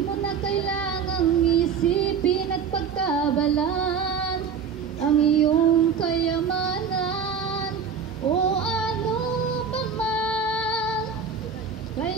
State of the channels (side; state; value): left; quieter; 6.5 dB